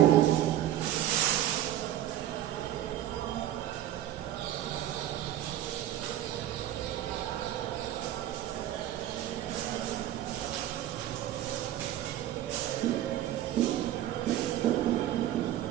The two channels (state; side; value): quieter; left; 12.7 dB